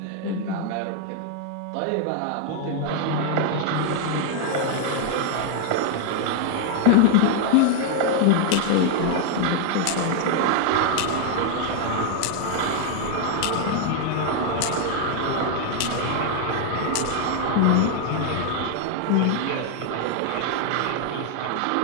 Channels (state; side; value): different; both; correlation 0.00